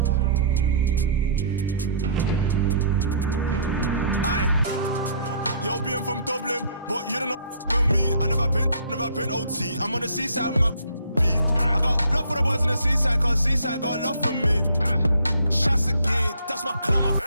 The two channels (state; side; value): inverted; both; correlation -0.57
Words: Aye. Yo, being from Dublin, but you don't know about me. I never been OT. I'm on the seaside with my beat. I got love for the boys on the seaside, cause seaside got love for me. Shots again, that's my clan, my